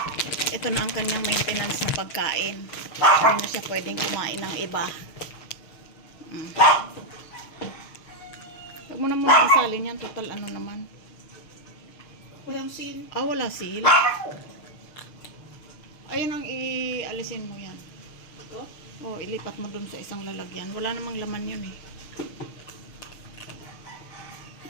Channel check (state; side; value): late; right; 6.5 ms